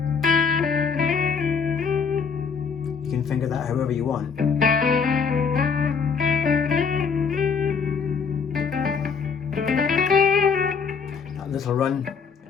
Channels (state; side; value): quieter; right; 5.9 dB